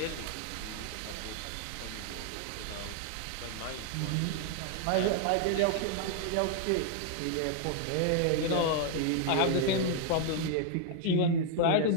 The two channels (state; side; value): different; both; correlation 0.00